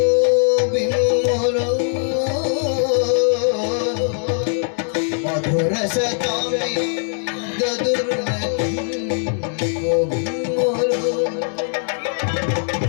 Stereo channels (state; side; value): silent; right; digital silence